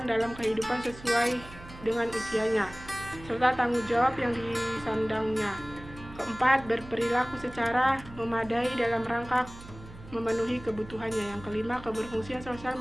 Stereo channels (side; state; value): right; noise; hum, 17 dB below the sound